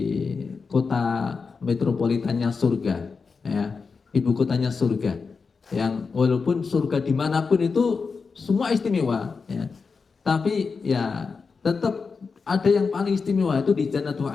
kota metropolitannya surga, ya, ibu kotanya surga. Yang walaupun surga dimanapun itu semua istimewa, ya, tapi ya tetap ada yang paling istimewa itu di Jannatul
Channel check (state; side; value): quieter; right; 4.9 dB